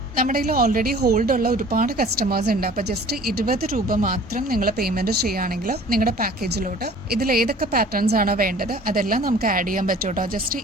നമ്മുടെ കയ്യിൽ ഓൾറെഡി ഹോൾഡ് ഉള്ള ഒരുപാട് കസ്റ്റമേഴ്സ് ഉണ്ട്. അപ്പോൾ ജസ്റ്റ് 20 രൂപ മാത്രം നിങ്ങൾ പേയ്മെന്റ് ചെയ്യുകയാണെങ്കിൽ നിങ്ങളുടെ പാക്കേജിലോട്ട് ഇതിൽ ഏതൊക്കെ പാറ്റേൺസ് ആണോ വേണ്ടത് അതെല്ലാം നമുക്ക് ആഡ് ചെയ്യാൻ പറ്റും കേട്ടോ. ജസ്റ്റ്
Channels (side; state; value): both; normal; correlation 0.48